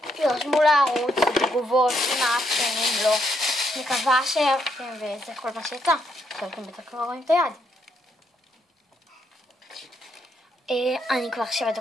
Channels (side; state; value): both; normal; correlation 0.75